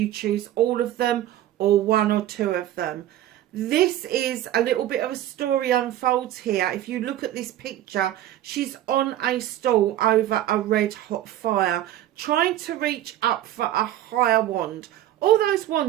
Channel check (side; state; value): left; quieter; 13.0 dB